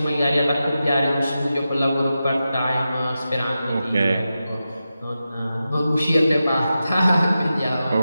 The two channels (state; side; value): inverted; both; correlation -0.91